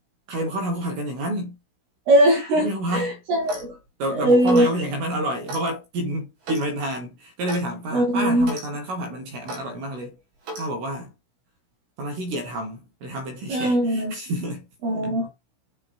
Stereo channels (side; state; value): left; late; 16 ms